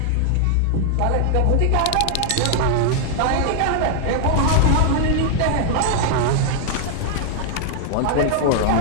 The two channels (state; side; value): different; both; correlation 0.00